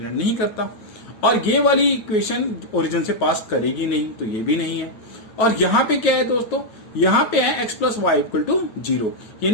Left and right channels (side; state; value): right; late; 9.4 ms